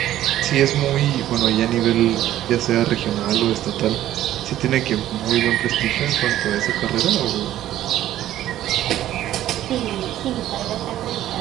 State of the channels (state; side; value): quieter; left; 13.0 dB